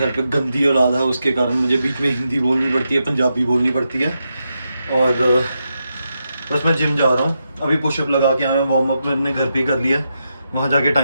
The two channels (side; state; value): both; inverted; correlation -0.85